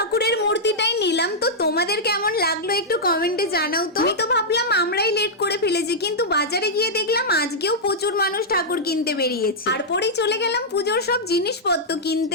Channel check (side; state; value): both; normal; correlation -0.07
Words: মূর্তিটাই নিলাম। তো তোমাদের কেমন লাগলো একটু কমেন্টে জানাও তো। আমি তো ভাবলাম আমরাই লেট করে ফেলেছি, কিন্তু বাজারে গিয়ে দেখলাম আজকেও প্রচুর মানুষ ঠাকুর কিনতে বেরিয়েছে। তারপরেই চলে গেলাম পুজোর সব জিনিসপত্র